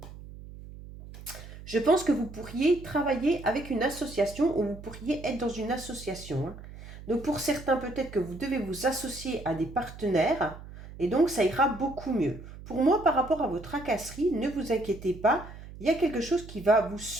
Je pense que vous pourriez travailler avec une association ou vous pourriez être dans une association, hein. Donc pour certains, peut-être que vous devez vous associer à des partenaires, Et donc, ça ira beaucoup mieux. Pour moi, par rapport à vos tracasseries, ne vous inquiétez pas. Il y a quelque chose qui va vous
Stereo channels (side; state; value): right; noise; hum, 15 dB below the sound